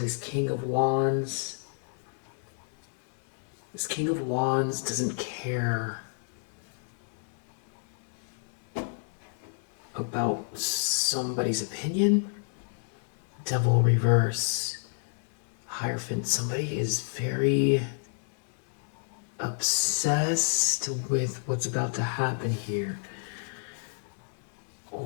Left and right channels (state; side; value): silent; right; digital silence